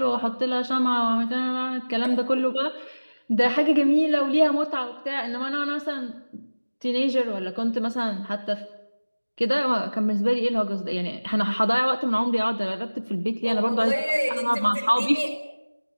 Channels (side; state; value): both; inverted; correlation -1.00